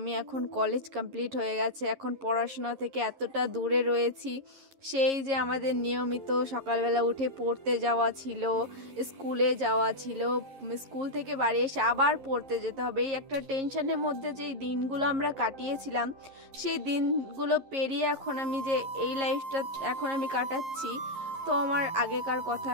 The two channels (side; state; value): left; late; 11 ms